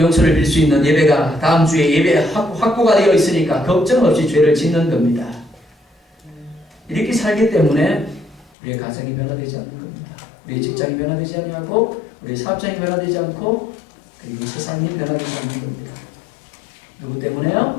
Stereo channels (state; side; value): drops out; right; at 8.5 s